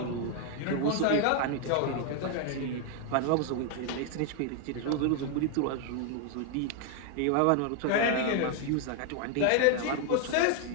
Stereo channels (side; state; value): both; different; correlation 0.00